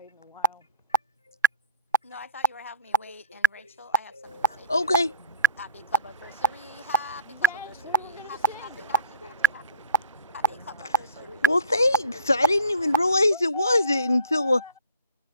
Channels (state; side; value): inverted; both; correlation -0.37